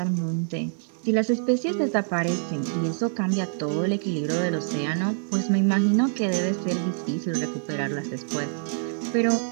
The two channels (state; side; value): silent; left; digital silence